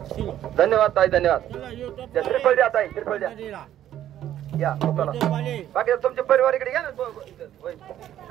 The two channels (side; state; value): left; quieter; 11.7 dB